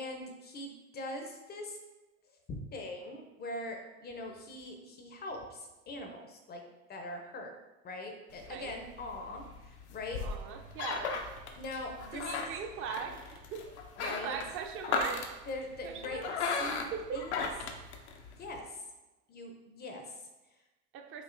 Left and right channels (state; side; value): normal; both; correlation 0.03